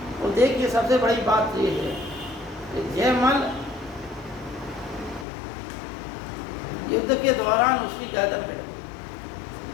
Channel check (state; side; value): drops out; right; at 5.2 s